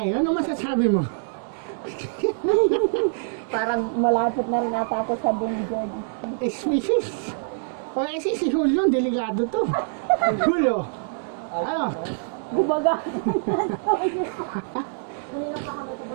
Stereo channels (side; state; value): left; silent; digital silence